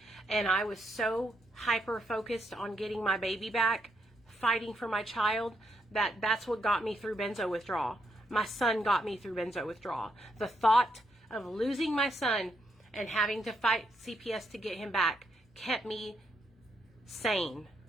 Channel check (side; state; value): both; normal; correlation 0.78